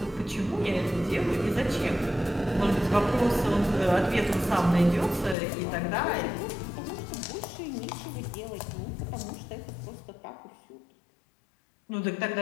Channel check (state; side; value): drops out; right; at 5.4 s